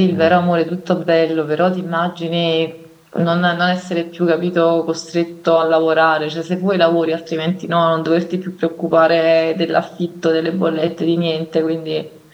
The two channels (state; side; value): identical; both; correlation 1.00